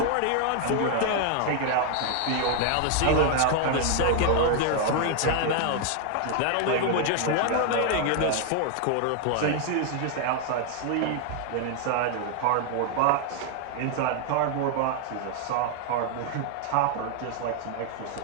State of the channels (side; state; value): both; different; correlation 0.00